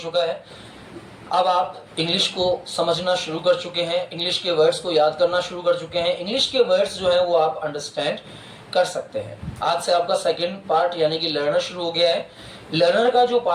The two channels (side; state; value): both; identical; correlation 1.00